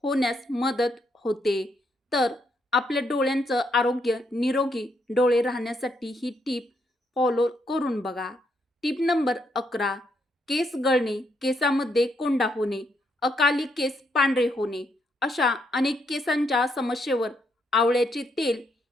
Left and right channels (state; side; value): normal; both; correlation 0.76